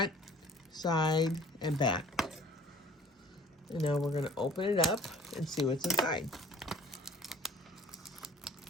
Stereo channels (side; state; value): both; normal; correlation 0.52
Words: side, and back. And now we're going to open it up and see what's inside.